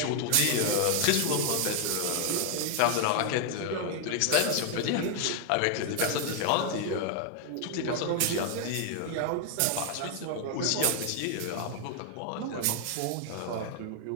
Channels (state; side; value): different; both; correlation 0.00